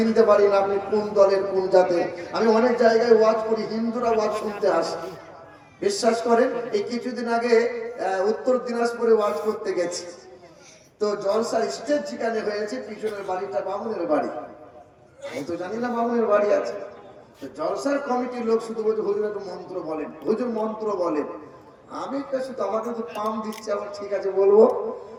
পারি না, আপনি কোন দলের কোন জাতের। আমি অনেক জায়গায় ওয়াজ করি, হিন্দুরা ওয়াজ শুনতে আসে। বিশ্বাস করেন, এই কিছুদিন আগে উত্তর দিনাজপুরে ওয়াজ করতে গেছি। তো জলসার স্টেজ যেখানে হয়েছে, পিছনের বাড়িটা বামুনের বাড়ি। আমি তো জানি না বামুনের বাড়ি আছে। জলসার কমিটির লোক শুধু বলছে, হুজুর একটু মন্ত্র বলেন, হুজুর মন্ত্র বলেন। আমি শুধু আমাকে তো পাম দিচ্ছে, আমার ঠিক আছে বলবো।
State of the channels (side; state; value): both; identical; correlation 1.00